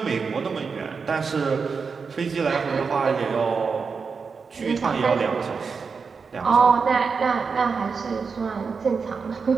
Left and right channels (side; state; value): left; quieter; 5.3 dB